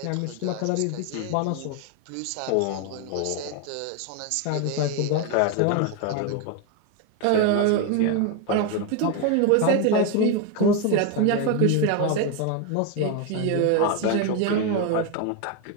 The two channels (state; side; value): different; both; correlation 0.02